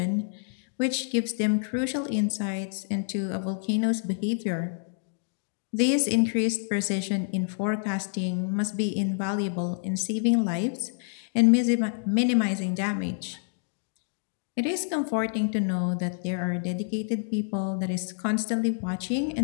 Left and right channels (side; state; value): right; silent; digital silence